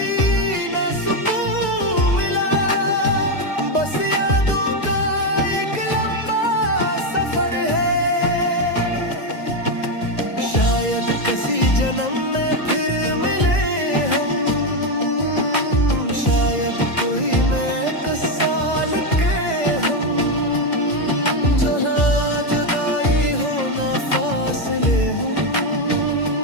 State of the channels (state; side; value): late; right; 2.0 ms